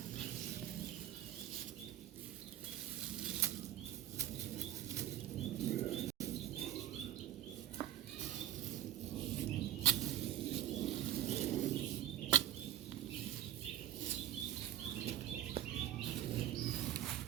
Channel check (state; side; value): quieter; left; 12.9 dB